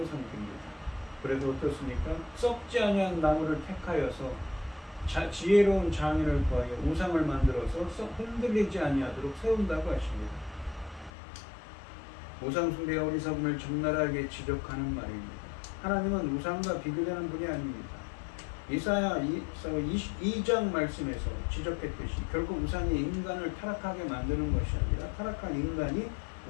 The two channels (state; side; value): drops out; right; at 11.1 s